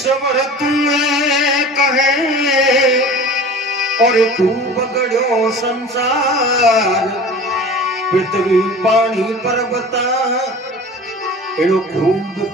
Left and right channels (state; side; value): normal; both; correlation 0.40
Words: तुम्हें कहे और खूब गढ़ो संसार, पृथ्वी पानी पर्वता एनो खूब